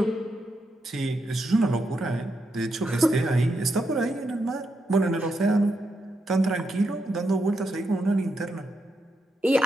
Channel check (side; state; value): both; normal; correlation 0.83